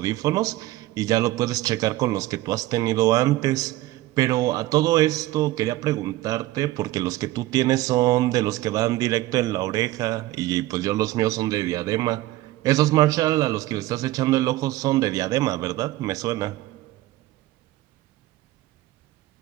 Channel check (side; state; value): left; quieter; 16.6 dB